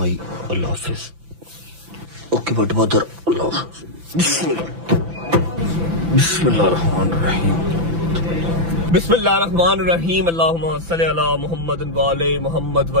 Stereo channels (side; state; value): left; late; 6.0 ms